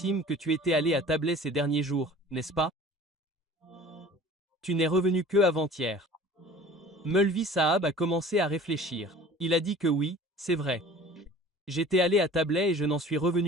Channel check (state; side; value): normal; both; correlation 0.44